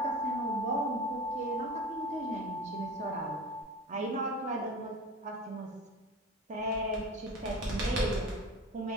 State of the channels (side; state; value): both; normal; correlation 0.34